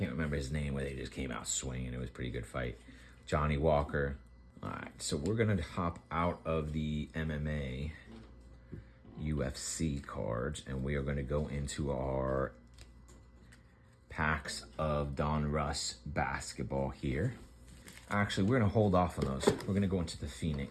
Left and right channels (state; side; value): identical; both; correlation 1.00